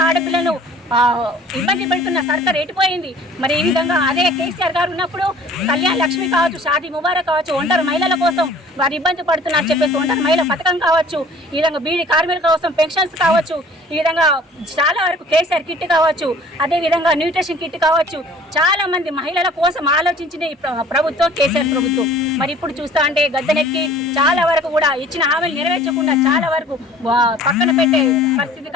ఆడపిల్లను ఇబ్బంది పెడుతున్న సర్కార్ ఎటుపోయింది? ఈ విధంగా అదే కేసీఆర్ గారు ఉన్నప్పుడు కళ్యాణ లక్ష్మి కావచ్చు, షాదీ ముబారక్ కావచ్చు, ఒంటరి మహిళల కోసం వారు ఇబ్బంది పడుతున్నారు చెప్పేసి ఒంటరి మహిళ పథకం కావచ్చు, ఈ విధంగా బీడీ కార్మికుల కోసం పెన్షన్స్ కావచ్చు, ఈ విధంగా చాలా వరకు కేసీఆర్ కిట్ కావచ్చు, అదేవిధంగా న్యూట్రిషన్ కిట్ కావచ్చు, చాలా మంది మహిళల కోసం ఆలోచించిన ఈ ప్రభుత్వం కేసీఆర్ ప్రభుత్వం. ఇప్పుడు చూస్తా అంటే గద్దెనెక్కి చాలా వరకు కూడా ఇచ్చిన హామీలు నెరవేర్చకుండా చాలా వరకు పక్కన పెట్టే పరిస్థితి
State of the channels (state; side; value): normal; both; correlation 0.49